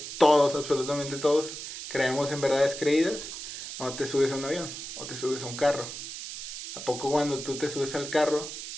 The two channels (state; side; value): noise; right; hiss, 8 dB below the sound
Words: absolutamente todos, creemos en verdades creídas cuando te subes a un avión o te subes a un carro. ¿A poco cuando tú te subes al carro,